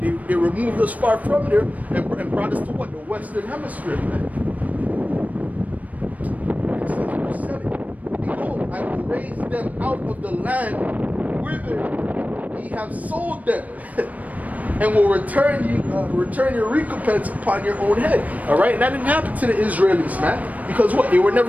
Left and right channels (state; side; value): late; left; 0.072 ms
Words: removed us far from there and brought us to what? The Western Hemisphere, man. It says verse 7, behold, I will raise them out of the land whither ye have sold them, and will return your recompense upon your own head. All right, and that didn't happen to the Israelis, man, because what? They were